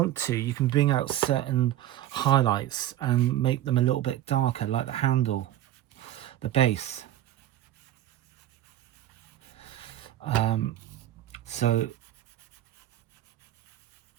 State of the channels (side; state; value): left; quieter; 12.9 dB